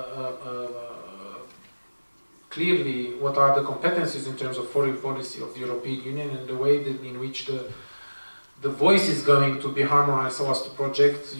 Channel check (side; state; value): both; inverted; correlation -1.00